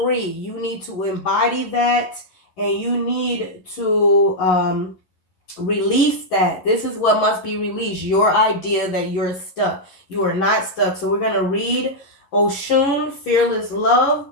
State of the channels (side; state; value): right; late; 11 ms